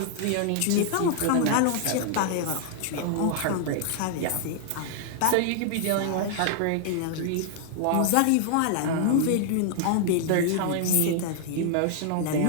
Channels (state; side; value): different; both; correlation 0.00